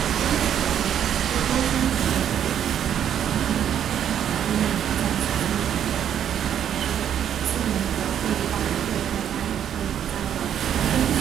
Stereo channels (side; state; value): left; quieter; 9.6 dB